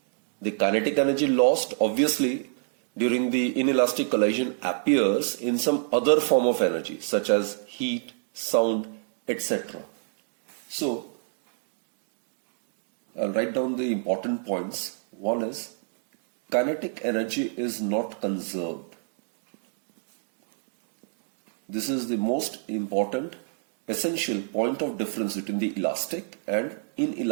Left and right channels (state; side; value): silent; left; digital silence